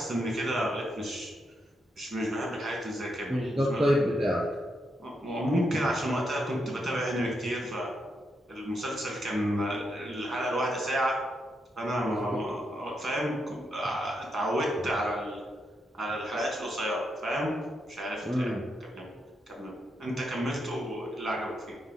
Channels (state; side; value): normal; both; correlation 0.81